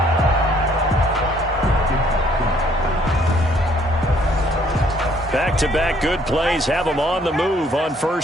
Back-to-back good plays have them on the move on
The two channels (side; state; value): both; normal; correlation 0.63